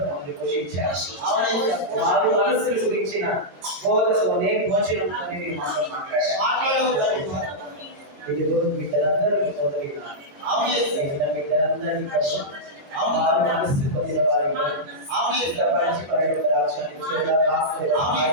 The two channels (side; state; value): left; late; 22 ms